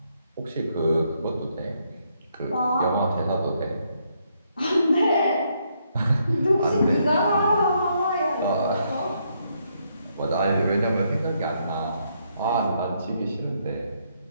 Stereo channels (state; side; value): inverted; both; correlation -0.75